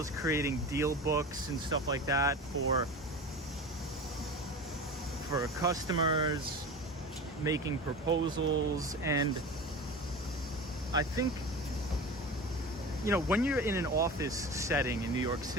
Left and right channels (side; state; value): both; normal; correlation 0.31